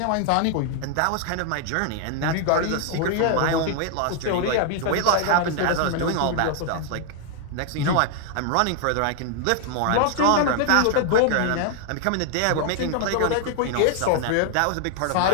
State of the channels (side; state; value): both; different; correlation 0.00